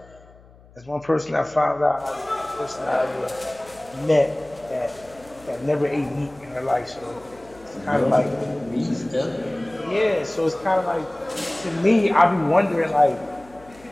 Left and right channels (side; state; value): left; noise; hum, 25 dB below the sound